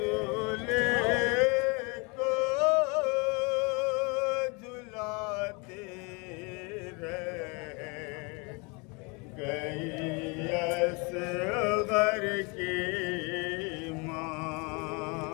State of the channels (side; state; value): right; quieter; 30.2 dB